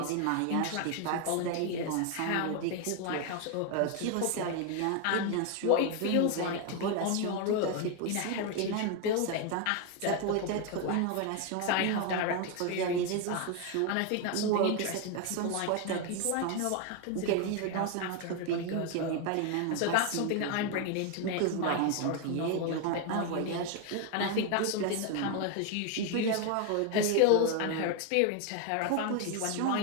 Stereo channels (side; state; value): both; different; correlation 0.01